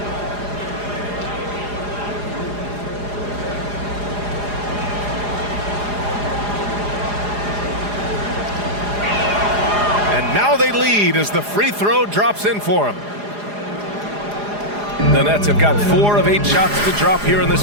And now they lead as the free throw drops in for him. The Nets have got 4 of 8 shots to drop here in this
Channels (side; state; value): left; late; 4.9 ms